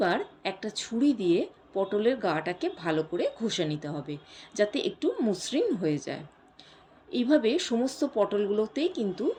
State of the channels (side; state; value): both; identical; correlation 1.00